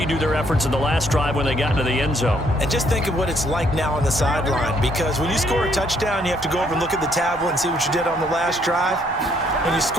their efforts in the last drive when they got into the end zone. And just think of what it's like now on the sideline, because when you score a touchdown, you have to go over and look at the tablet and see what you did on the last drive. When you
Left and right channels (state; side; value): normal; both; correlation 0.68